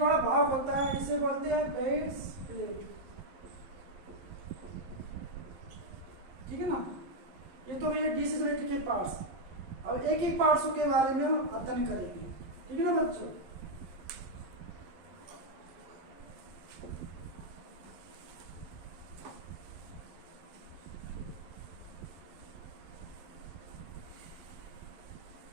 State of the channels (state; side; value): late; left; 11 ms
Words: भाग होता है, इसे बोलते हैं बेस प्लेट। ठीक है ना। ये तो भैया डीसी यूनिट के पार्ट्स। अब एक एक पार्ट्सों के बारे में हम अध्ययन करेंगे। ठीक है ना बच्चों।